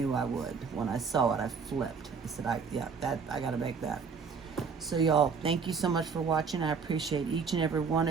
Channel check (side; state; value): left; quieter; 5.6 dB